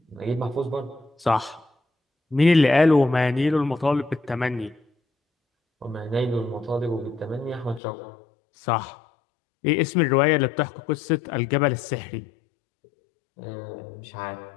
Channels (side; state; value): right; drops out; at 7.8 s